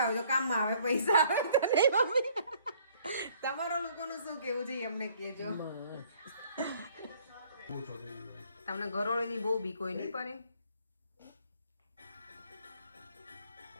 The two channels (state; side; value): inverted; both; correlation -0.60